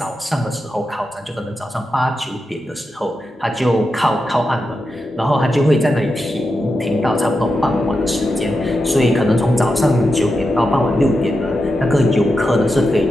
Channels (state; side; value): normal; both; correlation 0.88